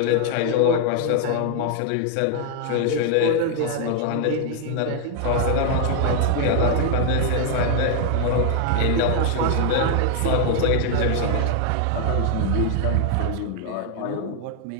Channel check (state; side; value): different; both; correlation 0.00